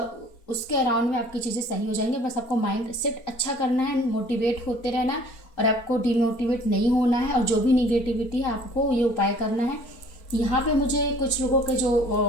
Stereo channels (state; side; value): late; right; 4.3 ms